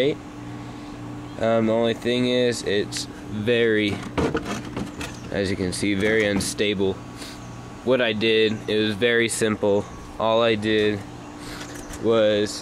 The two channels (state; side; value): identical; both; correlation 1.00